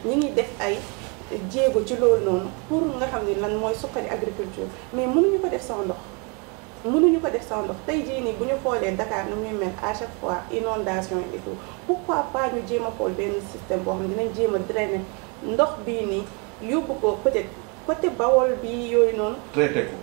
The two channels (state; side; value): quieter; left; 33.2 dB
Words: ñi ngi def ay jéego ci loolu noonu pour nga xam ni lan mooy suqali agriculture mais mënuñu ko def sans ndox mënuñu ko def sans ndox tey jii nii bu ñu xoolee Dakar nu muy mel à chaque fois inondation et tout pourquoi pas ñu jéem a xool benn système boo xam ne dinañ jéem a drainer ndox bii nii yóbbu ko peut-être côté Bawol bi yooyu noonu.